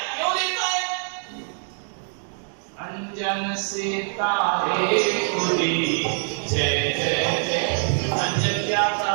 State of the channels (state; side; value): silent; left; 56 dB below the other